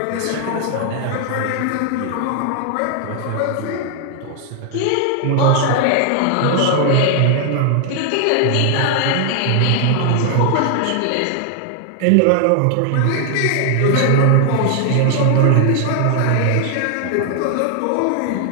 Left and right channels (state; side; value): different; both; correlation 0.00